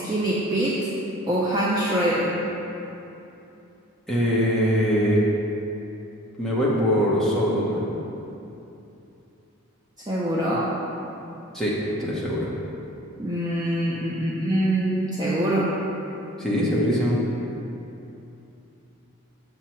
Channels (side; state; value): both; normal; correlation 0.49